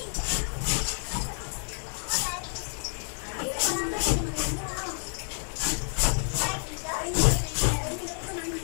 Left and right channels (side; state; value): right; silent; 57 dB below the other